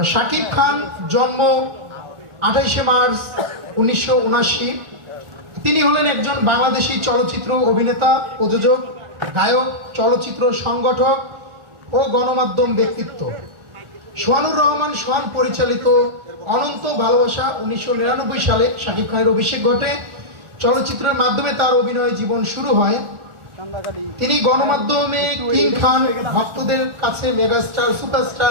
শাকিব খান জন্ম 28শে মার্চ 1979। তিনি হলেন একজন বাংলাদেশি চলচ্চিত্র অভিনেতা, প্রযোজক, গায়ক, চলচ্চিত্র সংগঠক ও গণমাধ্যম ব্যক্তিত্ব। সোহানুর রহমান সোহান পরিচালিত অনন্ত ভালোবাসা 1999 সালে শাকিব খানের অভিষেক ঘটে। চলচ্চিত্রের মাধ্যমে তার অভিনয় জীবন শুরু হয়। তিনি গণমাধ্যমে কিং খান, ভক্তদের কাছে মেগাস্টার,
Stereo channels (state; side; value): late; left; 1.3 ms